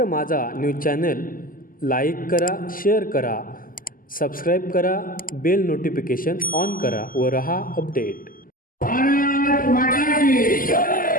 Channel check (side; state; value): right; late; 0.41 ms